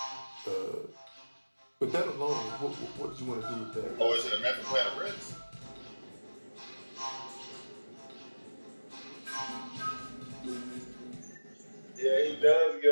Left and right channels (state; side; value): inverted; both; correlation -1.00